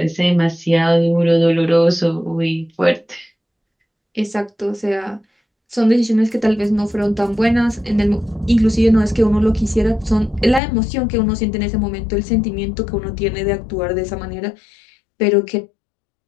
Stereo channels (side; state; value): right; drops out; at 10.6 s